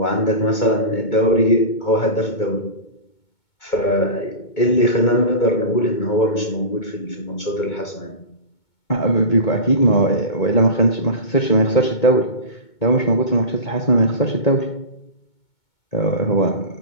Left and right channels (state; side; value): late; right; 2.2 ms